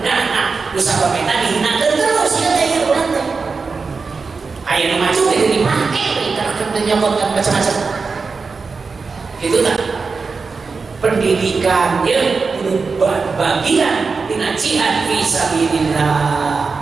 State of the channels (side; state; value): left; quieter; 4.6 dB